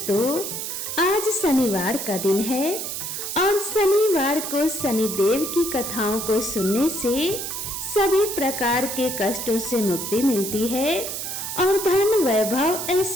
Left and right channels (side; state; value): right; noise; hiss, 5 dB below the sound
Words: आज शनिवार का दिन है और शनिवार को शनिदेव की कथाओं को सुनने से सभी प्रकार के कष्टों से मुक्ति मिलती है और धन वैभव